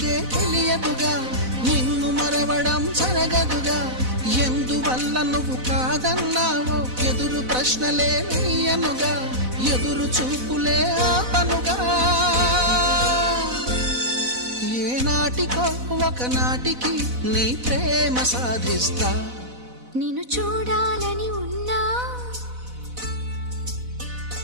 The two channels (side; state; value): left; late; 4.0 ms